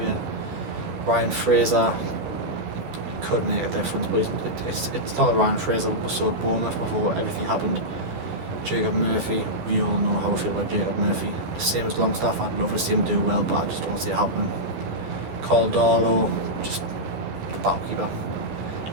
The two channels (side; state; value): left; late; 12 ms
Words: Ryan Fraser could make a difference, but it's not the Ryan Fraser we saw at Bournemouth before everything happened. Jacob Murphy, we all know how I feel about Jacob Murphy. Same as Longstaff, I'd love to see him do well, but I just don't see it happening. Carl Darlow, just the battle keeper.